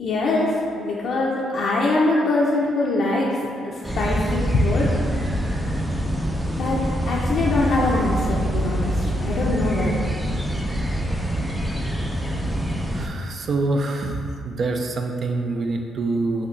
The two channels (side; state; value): both; normal; correlation 0.78